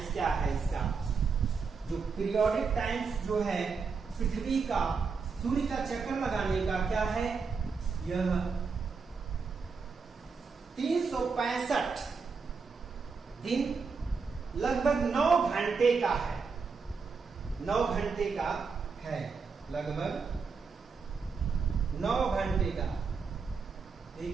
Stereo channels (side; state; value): left; quieter; 5.1 dB